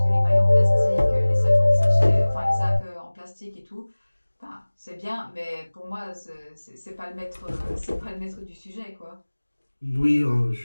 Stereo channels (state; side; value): inverted; both; correlation -1.00